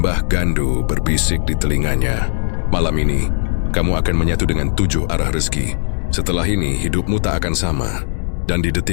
Gandu berbisik di telinganya, "Malam ini, kamu akan menyatu dengan 7 arah rezeki. Setelah ini, hidupmu tak akan sama." Dan di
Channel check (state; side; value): silent; right; digital silence